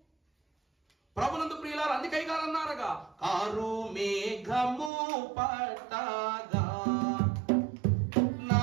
ప్రభునందు ప్రియులారా, అందుకై గారు అన్నారుగా, కారు మేఘము పట్టగా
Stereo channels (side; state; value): left; drops out; at 4.9 s